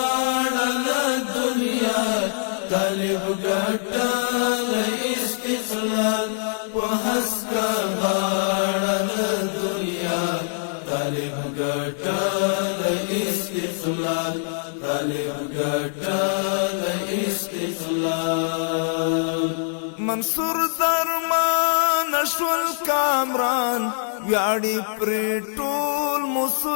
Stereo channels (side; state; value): right; silent; digital silence